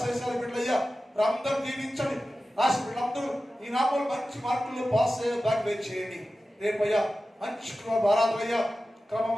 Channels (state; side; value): normal; both; correlation 0.95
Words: బిడ్డయ్యా, అందరూ దీవించండి. రాసి వీళ్ళందరూ ఈ నామలు మంచి మార్కులు పాస్ అయ్యే దాన్ని చేయండి. రేపయ్యా మంచి ఆరాధనయ్యా,